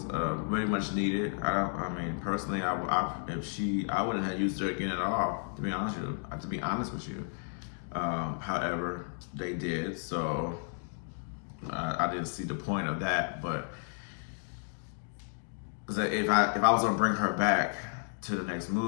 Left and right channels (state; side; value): silent; right; 56 dB below the other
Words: very much needed. Personally, I wouldn't have used her again at all. To be honest with you. However, they did, so I didn't see the point of that. But if I was gonna bring her back to the next